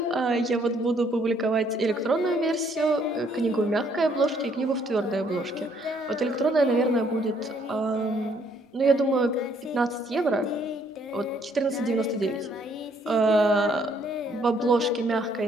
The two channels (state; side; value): normal; both; correlation 0.66